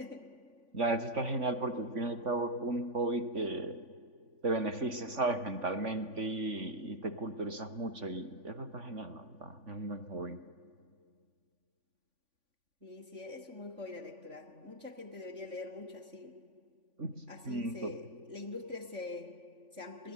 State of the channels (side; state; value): left; late; 3.5 ms